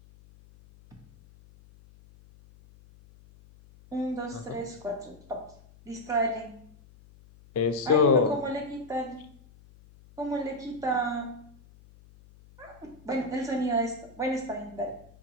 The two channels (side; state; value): left; noise; hum, 24 dB below the sound